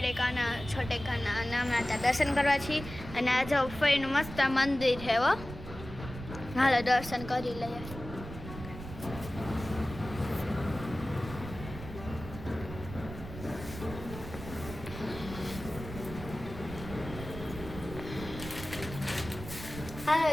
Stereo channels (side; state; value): right; noise; rumble, 11 dB below the sound